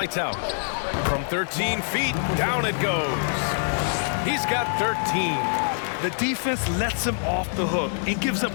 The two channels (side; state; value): right; silent; digital silence